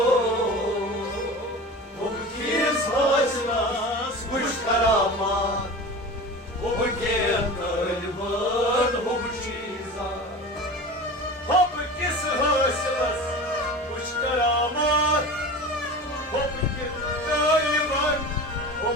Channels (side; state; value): both; normal; correlation 0.33